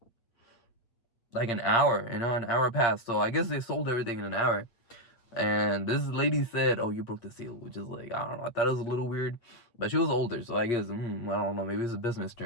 an hour, an hour passed. So I guess they sold everything in an hour. And this lady said, oh, you broke the seal, which is like, I don't know, I thought it was a little weird, but she was older, so I guess, I don't know, maybe it's a business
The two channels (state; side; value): late; right; 8.2 ms